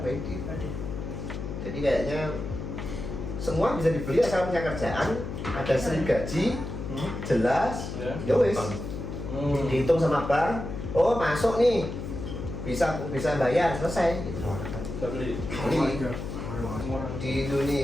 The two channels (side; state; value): left; noise; hum, 6 dB below the sound